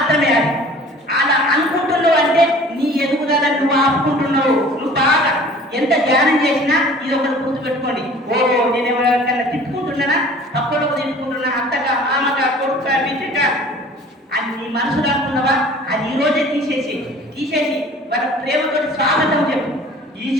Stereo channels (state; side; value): normal; both; correlation 0.47